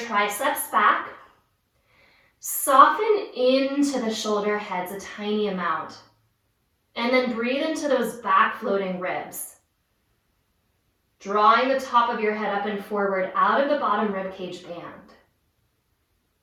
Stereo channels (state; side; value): identical; both; correlation 1.00